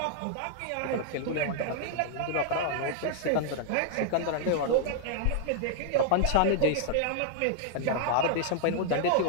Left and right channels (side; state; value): both; different; correlation -0.01